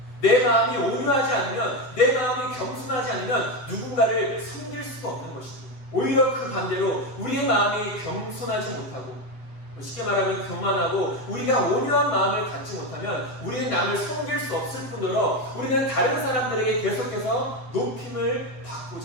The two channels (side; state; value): right; late; 7.9 ms